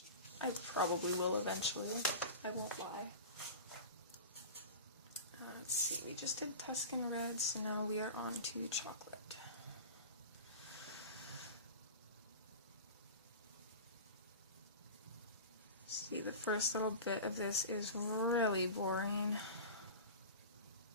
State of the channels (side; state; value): both; inverted; correlation -0.32